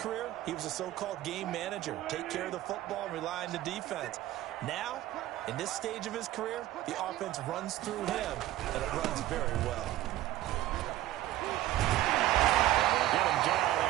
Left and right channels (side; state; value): left; quieter; 14.8 dB